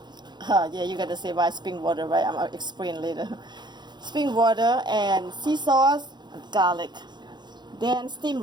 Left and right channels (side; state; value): left; late; 0.21 ms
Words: Yeah, you gotta say why spring water, right? I'm gonna explain later. Spring water and sea sauce and garlic. Then steamed